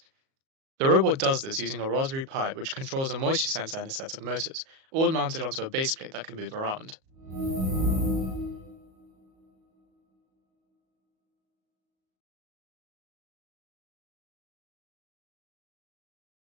The robot does this using a Raspberry Pi which controls a moisture sensor and a set of motors, all mounted onto a base plate that can move around.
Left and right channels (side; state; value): left; late; 37 ms